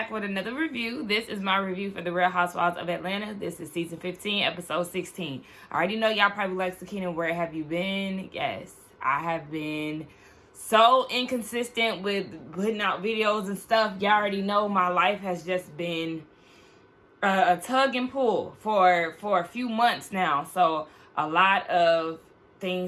with another review. This is my review for The Real Housewives of Atlanta. This is season 15, episode 16. I already know y'all probably like, Sakina, where have you been? Yes, I have been so inconsistent with putting out videos and stuff. Y'all already know my life has just been a tug and pull for a few months now. So a lot of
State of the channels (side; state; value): both; identical; correlation 1.00